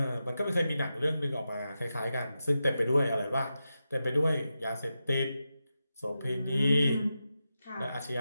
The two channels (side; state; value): both; inverted; correlation -0.90